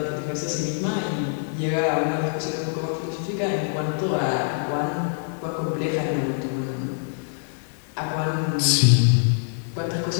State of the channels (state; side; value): silent; right; 62 dB below the other